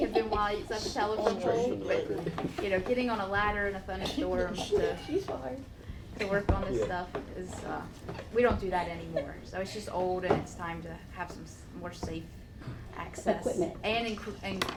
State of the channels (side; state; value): both; identical; correlation 1.00